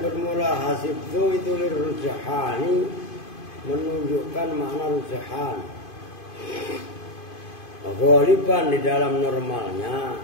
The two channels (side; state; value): right; late; 2.5 ms